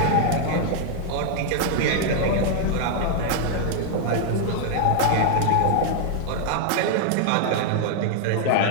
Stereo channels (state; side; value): different; both; correlation 0.00